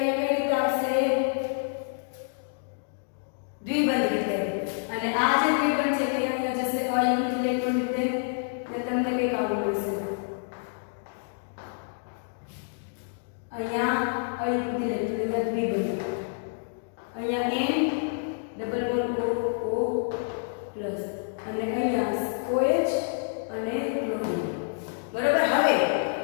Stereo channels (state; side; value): silent; right; digital silence